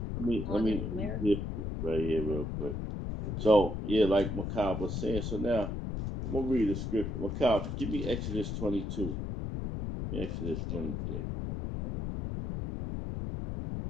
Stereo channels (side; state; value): left; noise; rumble, 3 dB below the sound